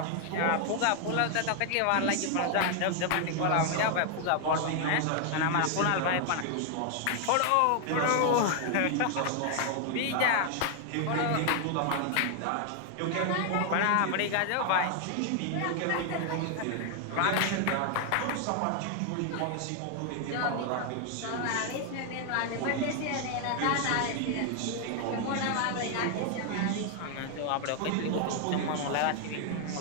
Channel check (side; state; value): both; different; correlation 0.00